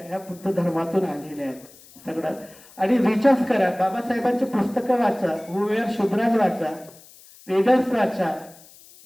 ह्या बुद्ध धर्मातून आलेल्या आहेत सगळं. आणि रिसर्च करा, बाबासाहेबांची पुस्तकं वाचा, हुवेर शुद्राज वाचा, रीडर्स वाचा,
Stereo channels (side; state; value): left; noise; hiss, 23 dB below the sound